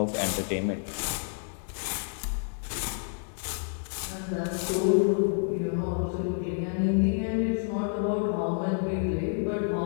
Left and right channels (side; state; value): right; silent; 59 dB below the other